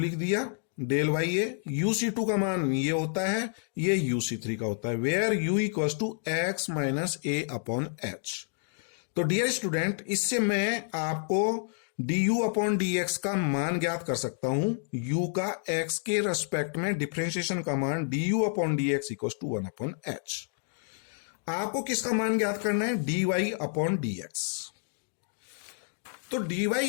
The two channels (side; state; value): right; silent; digital silence